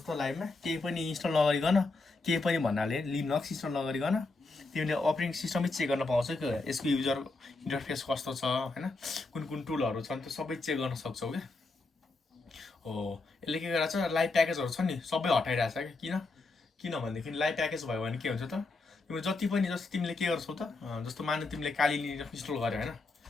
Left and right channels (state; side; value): quieter; right; 3.5 dB